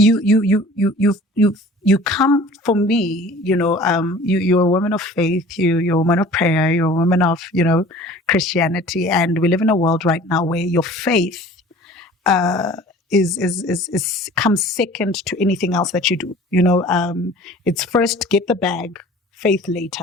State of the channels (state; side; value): normal; both; correlation 0.46